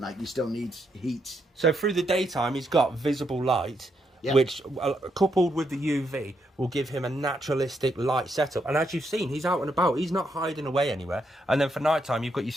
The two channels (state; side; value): normal; both; correlation 0.78